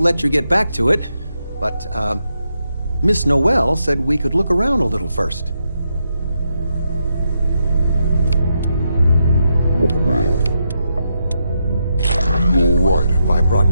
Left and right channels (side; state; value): both; inverted; correlation -0.82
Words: let you get back to it, but, Miss Noel said we could look around a little first. You alright if I brought